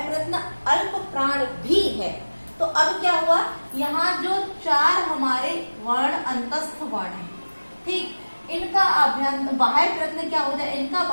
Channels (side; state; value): both; inverted; correlation -1.00